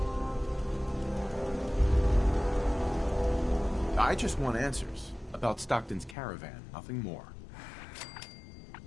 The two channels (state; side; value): drops out; right; at 6.2 s